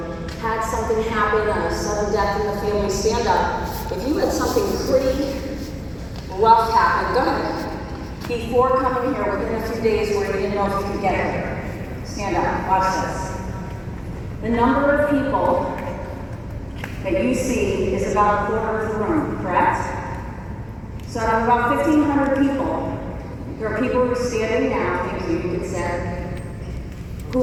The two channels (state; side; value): identical; both; correlation 1.00